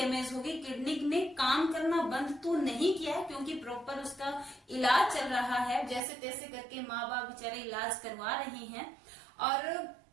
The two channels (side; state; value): left; drops out; at 6.0 s